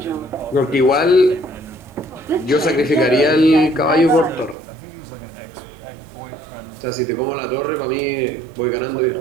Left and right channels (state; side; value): drops out; left; at 4.5 s